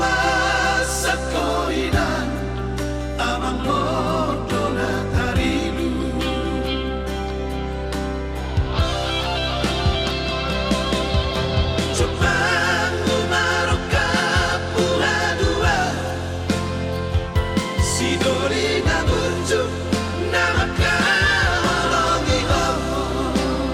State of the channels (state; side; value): identical; both; correlation 1.00